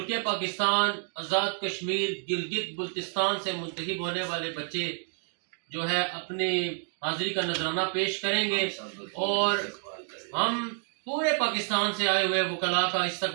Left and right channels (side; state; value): left; silent; 58 dB below the other